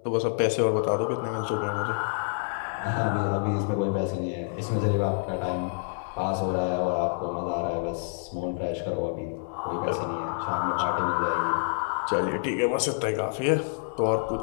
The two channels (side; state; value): right; silent; 60 dB below the other